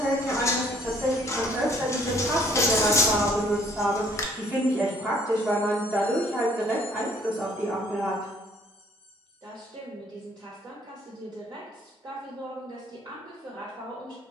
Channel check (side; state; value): both; normal; correlation 0.60